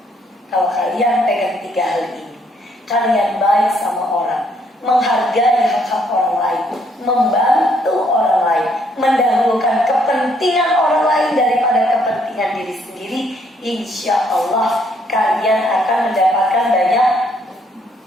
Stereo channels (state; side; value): normal; both; correlation 0.69